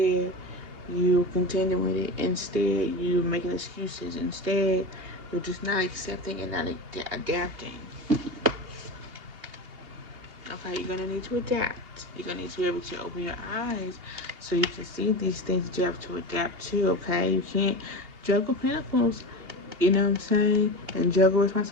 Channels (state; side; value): late; left; 2.8 ms